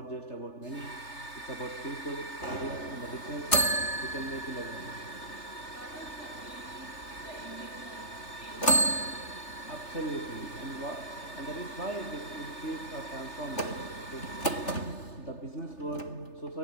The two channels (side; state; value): right; late; 3.3 ms